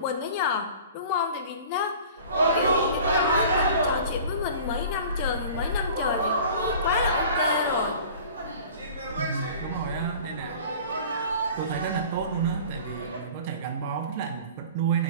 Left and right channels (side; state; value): both; inverted; correlation -0.43